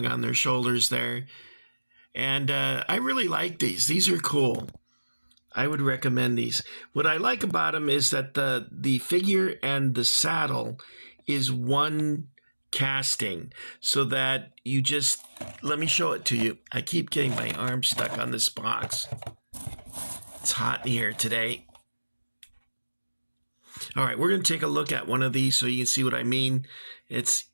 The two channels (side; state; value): both; inverted; correlation -1.00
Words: on their shoulders there. And I really like these. These are cool. I would recommend these. What I like about them is that the figure and the saddle is one casting, so that you just... Let me show it to you. I keep getting my arm stuck on this box. It's hot in here today. All right, we're going to take a look at one of these so you can see what I mean. It's